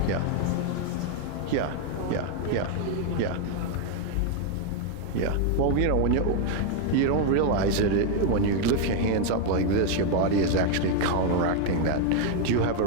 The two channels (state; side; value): different; both; correlation 0.01